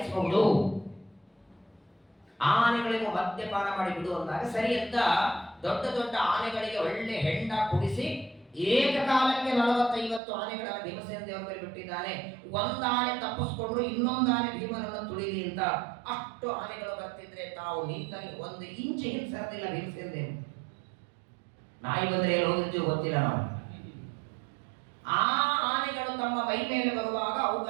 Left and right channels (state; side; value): drops out; left; at 10.2 s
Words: ಆನೆಗಳಿಗೂ ಮದ್ಯಪಾನ ಮಾಡಿ ಬಿಡು ಅಂದಾಗ ಸರಿ ಅಂತ ದೊಡ್ಡ ದೊಡ್ಡ ಆನೆಗಳಿಗೆ ಒಳ್ಳೆ ಹೆಂಡ ಕುಡಿಸಿ ಏಕಕಾಲಕ್ಕೆ 40-50 ಆನೆಗಳನ್ನು ಭೀಮಸೇನ ದೇವರ ಮೇಲೆ ಬಿಟ್ಟಿದ್ದಾನೆ. ಒಂದು ಆನೆ ತಪ್ಪಿಸ್ಕೊಂಡ್ರು, ಇನ್ನೊಂದು ಆನೆ ಭೀಮನನ್ನು ತುಳಿಲಿ ಅಂತ. ಅಷ್ಟು ಆನೆಗಳು ಬರ್ತಿದ್ರೆ ತಾವು ನಿಂತಲ್ಲಿ 1 ಇಂಚ್ ಹಿಂಸರದಿಲ್ಲ ಭೀಮಸೇನ ದೇವರು. ನಾಯಿ ಬಂದ್ರೆ ಎಲ್ಲಿ ಹೋಗಿರ್ತೀವಿ ಗೊತ್ತಿಲ್ಲ ನಾವು. ಆ ಆನೆಗಳು ತಮ್ಮ ಮೈ ಮೇಲೆ ಬರುವಾಗ